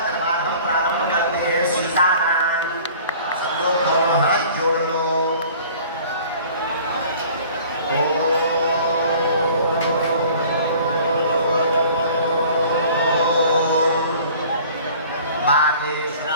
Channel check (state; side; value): inverted; both; correlation -0.48